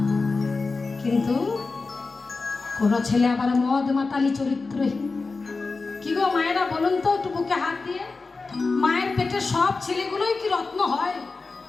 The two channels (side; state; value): right; quieter; 4.0 dB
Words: কিন্তু কোনো ছেলে আবার মদ মাতালি চরিত্রহীন। কি গো মায়েরা বলুন তো, একটু বুকে হাত দিয়ে, মায়ের পেটে সব ছেলেগুলোই কি রত্ন হয়?